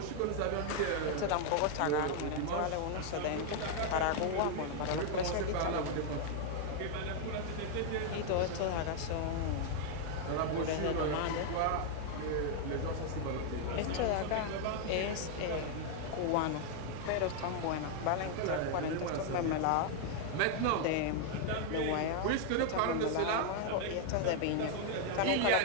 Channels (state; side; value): different; both; correlation 0.00